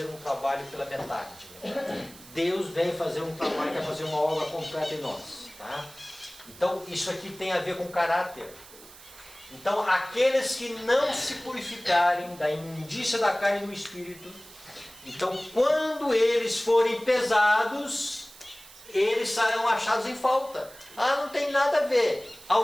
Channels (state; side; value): noise; right; hiss, 20 dB below the sound